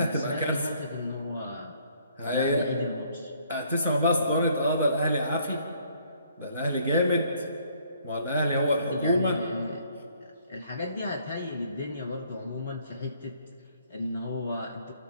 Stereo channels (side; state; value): both; inverted; correlation -0.63